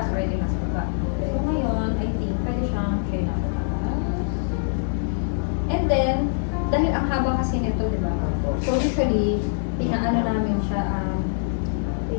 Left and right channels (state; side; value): silent; right; digital silence